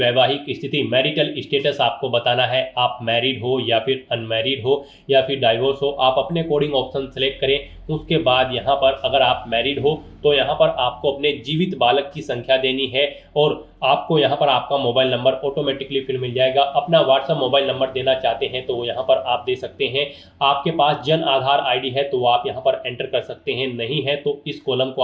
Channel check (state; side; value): identical; both; correlation 1.00